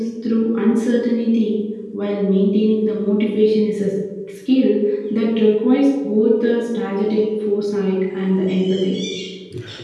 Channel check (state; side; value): identical; both; correlation 1.00